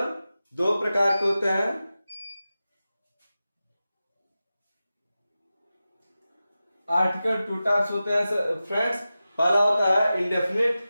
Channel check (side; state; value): both; inverted; correlation -0.94